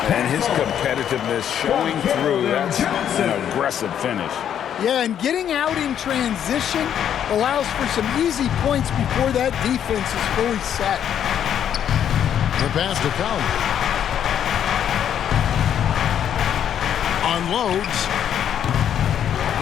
And his competitiveness showing through. That's an aggressive finish. Yeah, and getting out in transition allows for some easy points before that defense is fully set. The pass to Conley. Unloads.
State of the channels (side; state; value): right; quieter; 9.4 dB